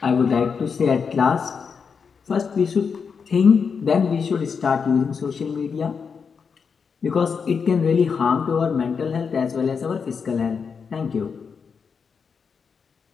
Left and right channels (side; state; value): right; quieter; 5.9 dB